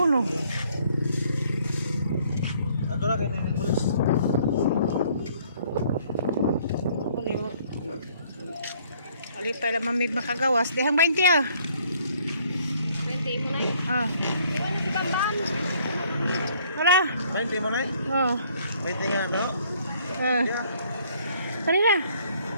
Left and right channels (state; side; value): inverted; both; correlation -0.62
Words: no? Ato na kay ni bulis. Ali pa lang mamig makagawas. Dihang 20 ah. 20 mo na yun. Ah. Iwan na si Bamban. Wala. 20 mo na eh. Oh. 20 nga no. Kanina.